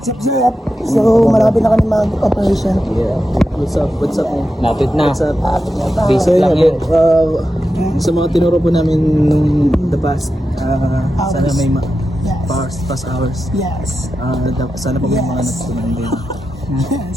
So, malapit na kami mag-operation. Yeah. What's up? Man? Lapit na. What's up? Basic lang yan. Sa mga tinuro po namin nung the past, sana may Yes. past hours. Yes. Sana po may mga Yes. natutunan din. Yes.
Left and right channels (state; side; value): normal; both; correlation 0.90